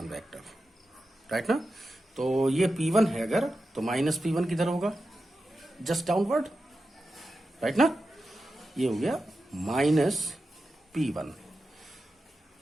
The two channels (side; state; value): both; normal; correlation 0.91